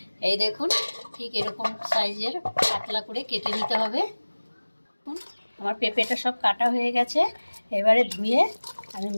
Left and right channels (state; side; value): inverted; both; correlation -1.00